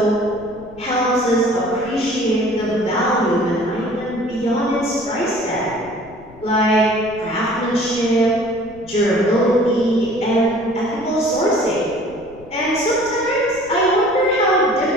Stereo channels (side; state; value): left; noise; rumble, 22 dB below the sound